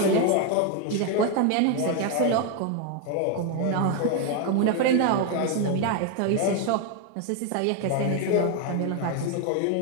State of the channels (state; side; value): different; both; correlation 0.01